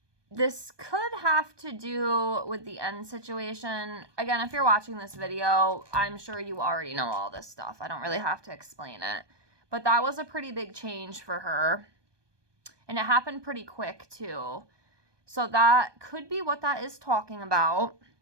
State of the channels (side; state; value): left; late; 1.2 ms